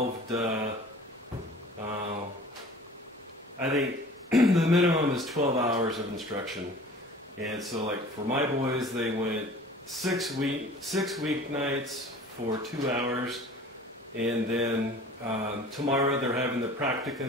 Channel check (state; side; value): normal; both; correlation 0.45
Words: to, I think the minimum is 12 hours of instruction. And so, like, for my boys, they went 6 weeknights for 2 hours, and then tomorrow they're having the